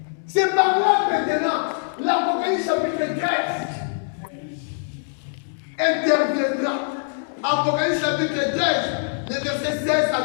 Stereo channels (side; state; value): right; silent; 63 dB below the other